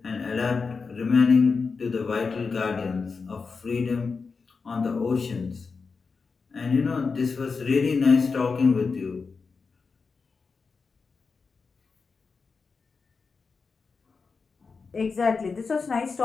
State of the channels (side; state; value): right; quieter; 4.8 dB